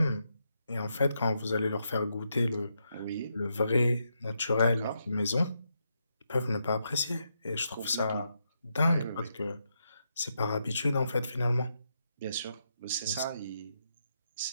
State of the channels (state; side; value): inverted; both; correlation -0.82